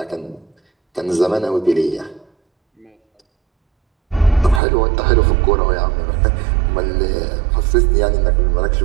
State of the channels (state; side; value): drops out; left; at 4.6 s